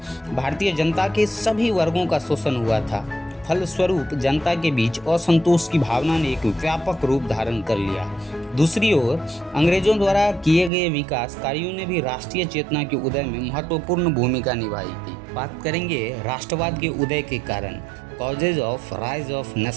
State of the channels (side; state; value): left; drops out; at 10.7 s